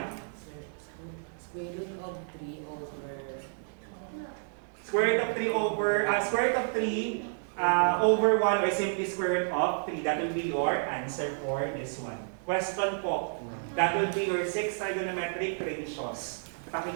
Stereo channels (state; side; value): silent; left; 57 dB below the other